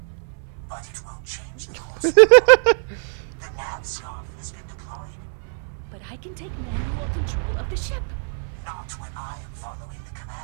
but it won't change the course of the nav scarf has been deployed. But I can take manual control of the ship. Not when I am following the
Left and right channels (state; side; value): silent; left; 63 dB below the other